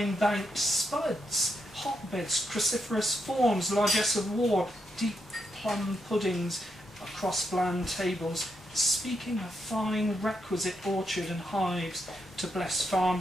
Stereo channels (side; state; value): both; normal; correlation 0.81